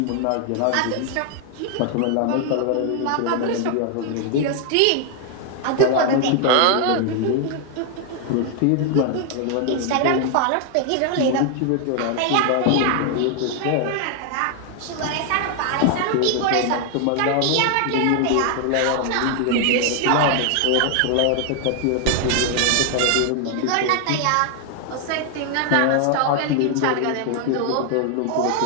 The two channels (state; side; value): different; both; correlation 0.00